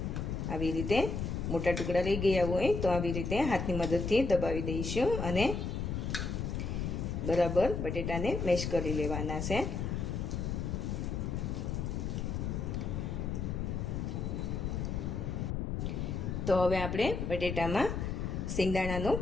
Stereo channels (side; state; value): left; noise; rumble, 2 dB below the sound